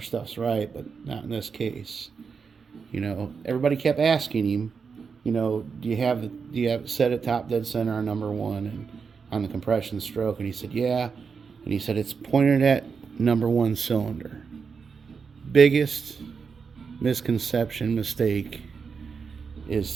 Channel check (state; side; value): quieter; left; 5.6 dB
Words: stuff's right, but not in this case. Everybody kept asking him, do you have it set at top dead center on number one and on the compression stroke? And he said, yeah. And he said, it's pointed at number one cylinder. Biggest misconception, mistake